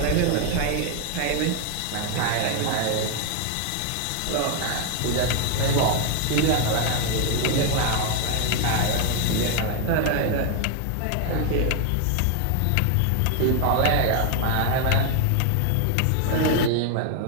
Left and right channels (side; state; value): both; different; correlation 0.00